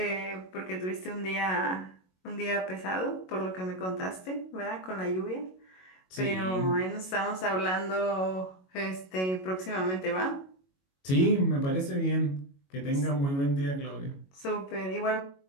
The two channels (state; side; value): late; right; 22 ms